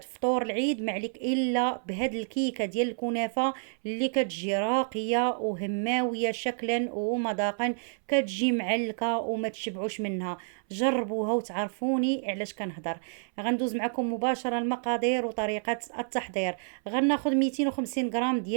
العيد، ما عليك إلا بهاد الكيكة ديال الكنافة اللي كتجي راقية وهماوية شكلا ومذاقا، كتجي معلكة وما تشبعوش منها. جربوها وتعرفوني علاش كنهضر. غندوز معكم مباشرة المقادير وطريقة التحضير. غناخد 250 غرام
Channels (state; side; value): silent; left; 59 dB below the other